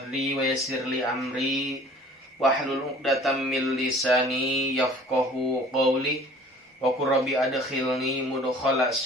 wa yassir li amri wahlul 'uqdatam min lisani yafqahu qawli. Wa qur rabbi adkhilni mudkhala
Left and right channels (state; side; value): normal; both; correlation 0.49